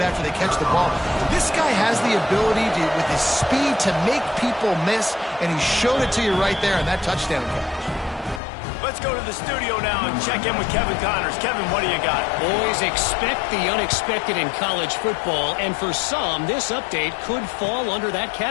they catch the ball. This guy has the ability to, with his speed, to make people miss, and he showed it to you right there on that touchdown catch. Let's go to the studio now and check in with Kevin Connors. Kevin, what do you got? Boys, expect the unexpected in college football, and for some, this update could fall under that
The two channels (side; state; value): right; drops out; at 8.4 s